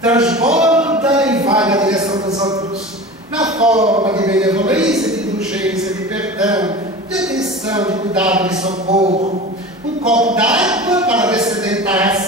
Transborda e vai na direção dos outros. Na forma de benevolência, de indulgência, de perdão, de atenção, de cuidado, de socorro. Um copo d'água para descedentar a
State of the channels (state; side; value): normal; both; correlation 0.34